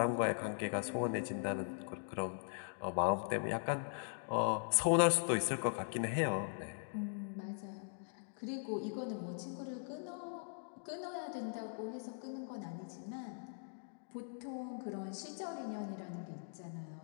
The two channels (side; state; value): right; silent; digital silence